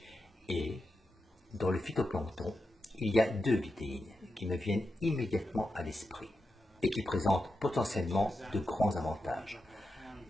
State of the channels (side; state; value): both; normal; correlation 0.88